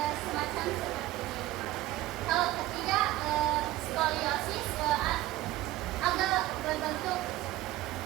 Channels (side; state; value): left; quieter; 15.9 dB